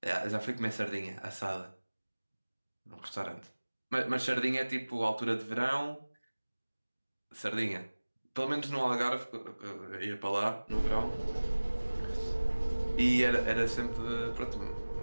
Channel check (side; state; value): both; inverted; correlation -1.00